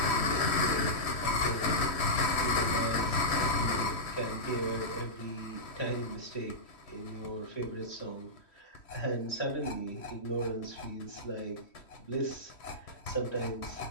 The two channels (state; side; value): late; right; 3.1 ms